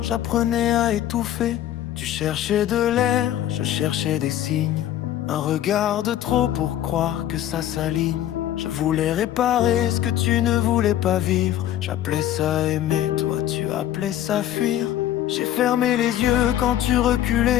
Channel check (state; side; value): quieter; right; 12.0 dB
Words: à étouffer. Tu cherchais de l'air, je cherchais des signes. Un regard de trop pour croire que ça s'aligne. Je voulais réparer ce que tu ne voulais pas vivre. J'appelais ça aimer, toi tu appelais ça fuir. J'ai fermé les yeux quand tu